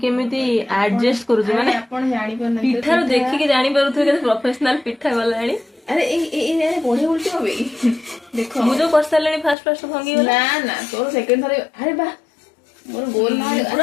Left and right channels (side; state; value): right; drops out; at 9.6 s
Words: କେମିତି ଆଡଜଷ୍ଟ କରୁଛି ମାନେ ଆପଣ ଜାଣିପାରୁନାହାନ୍ତି ପିଠାରୁ ଦେଖିକି ଜାଣିପାରୁଥିବେ କେତେ ପ୍ରଫେସନାଲ ପିଠା ଗଲାଣି ଆରେ ଏଇ ବଢିଆ ଉଲ୍ଟି হবে ଦେଖ ମୁଁ ଯୋଉ କରିସାରିଲିଣି ଫାଷ୍ଟ ଭାଙ୍ଗି ଗଲା ନା ତୋର ସେକେଣ୍ଡ ଥରେ ଆରେ ବା ମୋର ଗୋଲ ନା